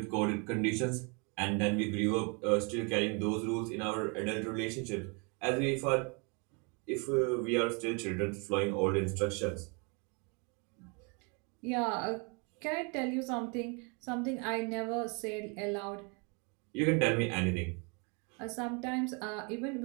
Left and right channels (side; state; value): left; quieter; 33.6 dB